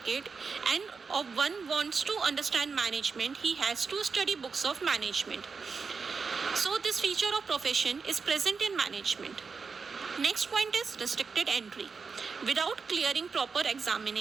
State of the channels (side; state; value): left; quieter; 5.1 dB